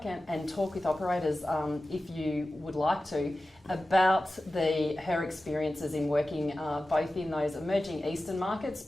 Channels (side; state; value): both; normal; correlation 0.95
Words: and talk with operators, if you would like to, about her experiences in working both in those emerging Eastern markets,